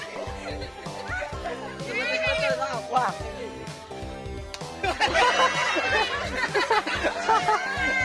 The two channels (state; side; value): identical; both; correlation 1.00